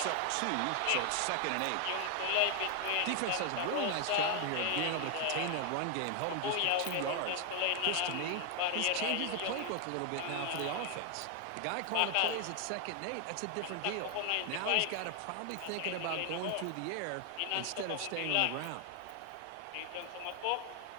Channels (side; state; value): both; different; correlation 0.00